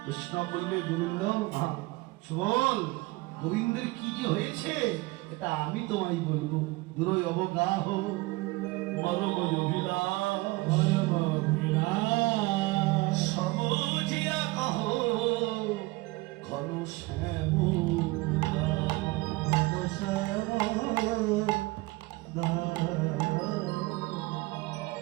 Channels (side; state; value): left; quieter; 22.2 dB